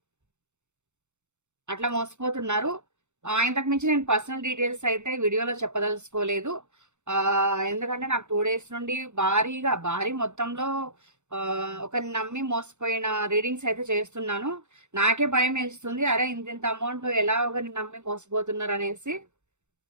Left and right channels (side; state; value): left; late; 0.83 ms